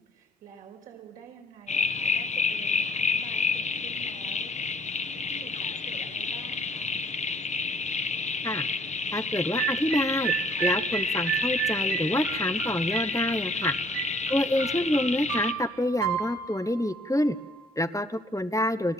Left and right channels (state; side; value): normal; both; correlation 0.59